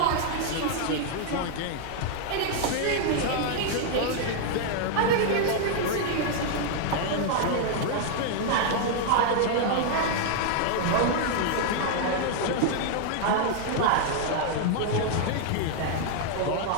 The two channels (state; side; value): different; both; correlation 0.00